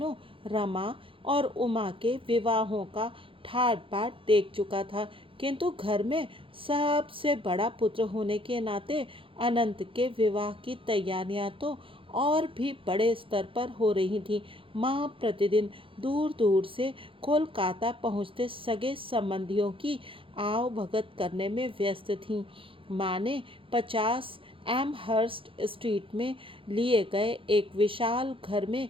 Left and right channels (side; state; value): left; late; 0.26 ms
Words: रमा और उमा के विवाहों का ठाट बाट देख चुका था, किंतु घर में सबसे बड़ा पुत्र होने के नाते अनंत के विवाह की तैयारियां तो और भी बड़े स्तर पर हो रही थी। माँ प्रतिदिन दूर दूर से कोलकाता पहुँचते सगे संबंधियों की आव भगत करने में व्यस्त थीं। माँ ने 50 एमहर्स्ट स्ट्रीट में लिए गए एक विशाल घर में